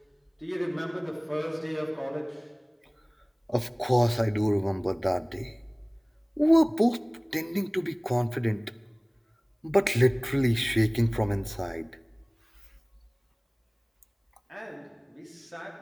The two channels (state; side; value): identical; both; correlation 1.00